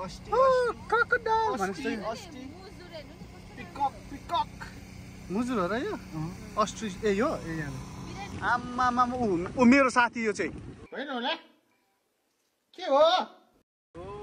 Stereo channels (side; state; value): both; identical; correlation 1.00